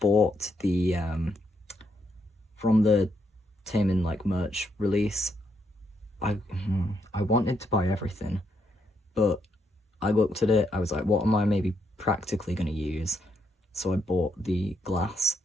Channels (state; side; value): normal; both; correlation 0.77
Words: the from the Taman merch release. I wanted to buy everything, but I looked at it, I was like, what am I maybe practically going to use? So I bought the glass,